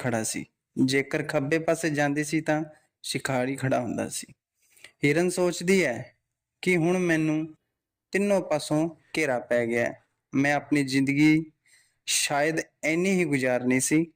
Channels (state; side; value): identical; both; correlation 1.00